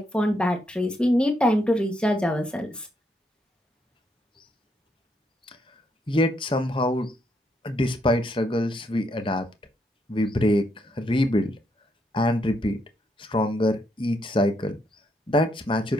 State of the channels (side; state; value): both; normal; correlation 0.76